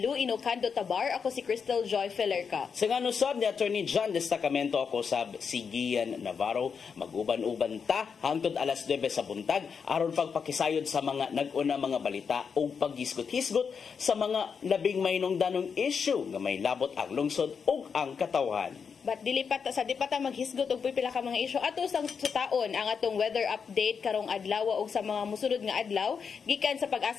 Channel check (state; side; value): quieter; right; 6.2 dB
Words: Inocando Tabar, ako si Crystal Joy Felerca. Sa nga nusab ni Attorney John Destacamento, ako sab si Gian Navarro. Mag-uban-uban ta hangtod alas 9 sa buntag aron pagpakisayod sa mga nag-una mga balita o paghisgot-hisgot sa mga labing mahinungdanong issue nga may labot ang lungsod ug ang katawhan. But di pa ta maghisgot og pipila ka mga isyu ato sang sutaon ang atong weather update karong adlaw ug sa mga mosunod nga adlaw gikan sa